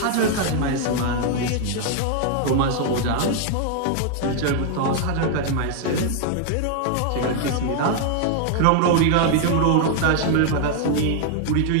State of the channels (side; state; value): both; different; correlation 0.00